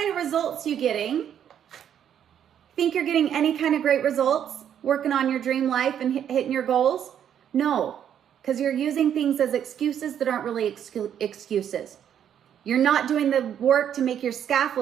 of results you getting? Think you're getting any kind of great results working on your dream life and hitting your goals? No, because you're using things as excuses that aren't really excuses. You're not doing the work to make your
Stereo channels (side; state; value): left; quieter; 9.4 dB